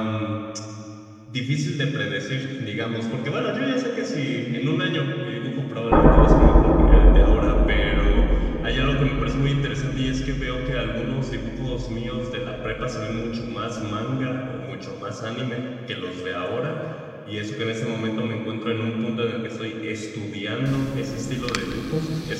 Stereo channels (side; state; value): both; identical; correlation 1.00